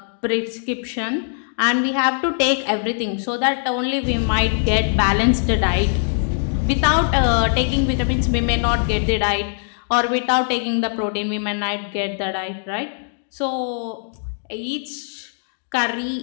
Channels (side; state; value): right; silent; digital silence